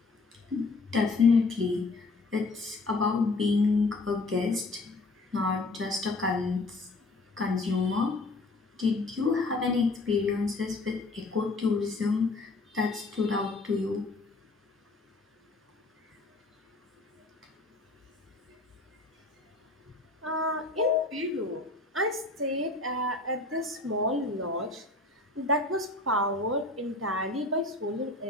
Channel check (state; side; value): quieter; right; 3.3 dB